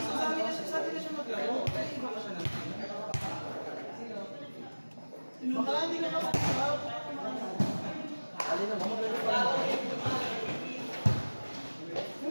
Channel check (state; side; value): inverted; both; correlation -1.00